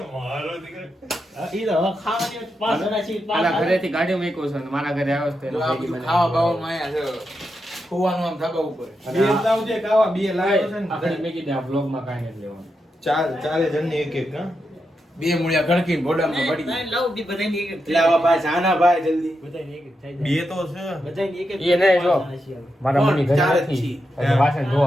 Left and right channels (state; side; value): normal; both; correlation 0.86